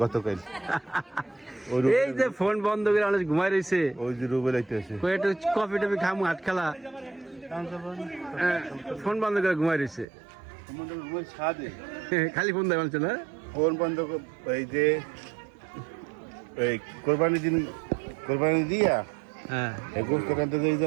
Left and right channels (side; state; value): left; drops out; at 10.1 s